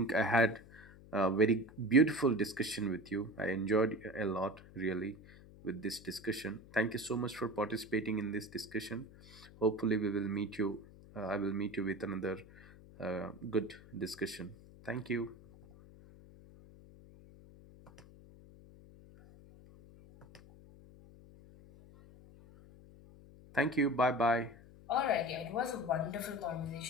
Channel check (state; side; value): noise; left; hum, 20 dB below the sound